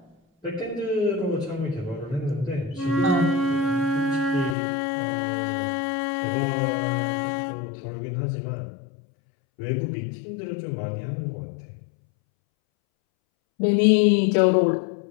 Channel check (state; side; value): drops out; right; at 4.5 s